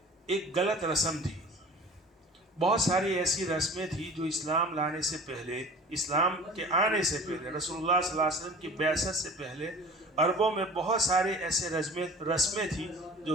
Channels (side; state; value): both; normal; correlation 0.42